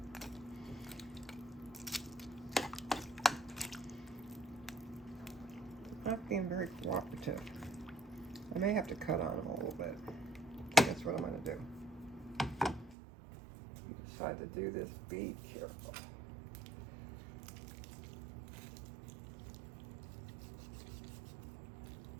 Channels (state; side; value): drops out; left; at 13.0 s